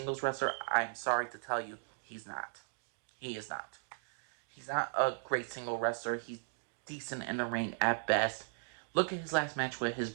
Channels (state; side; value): silent; left; digital silence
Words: wrestler, I'm sorry to tell you, he's not. He is not. He's not a great single wrestler. He's decent in the ring at best. Look at his last match with his